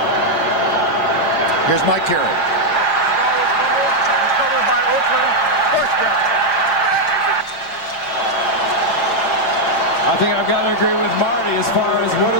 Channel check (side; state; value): right; late; 6.6 ms